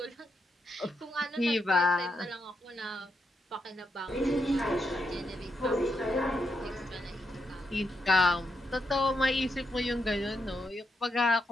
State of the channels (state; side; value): normal; both; correlation 0.82